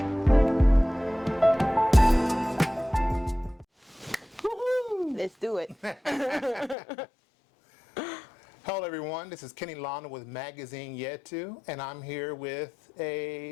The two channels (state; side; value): drops out; right; at 6.8 s